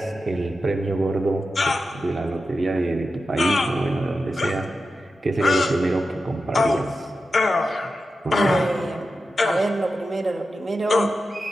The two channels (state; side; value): normal; both; correlation 0.91